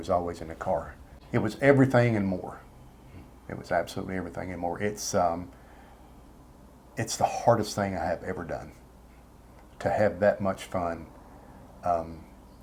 always in the car. It was everything and more. It was absolutely everything and more. It's the hardest thing I have ever done, to have that much fun.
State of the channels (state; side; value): identical; both; correlation 1.00